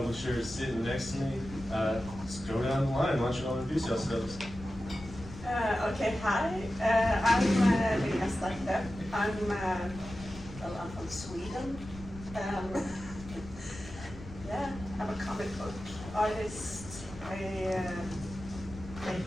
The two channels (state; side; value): noise; left; rumble, 14 dB below the sound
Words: sitting next to me. Let's go down the line. Why don't you all introduce yourselves? Okay, hi. I'm Lina Starkler. I'm from Sweden. Yeah, I'm a comic book artist. I